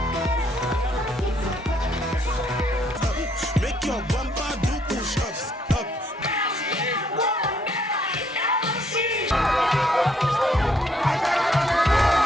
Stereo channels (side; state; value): both; normal; correlation 0.69